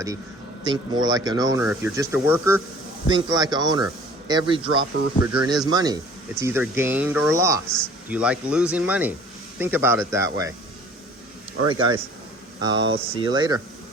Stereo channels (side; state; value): both; normal; correlation 0.49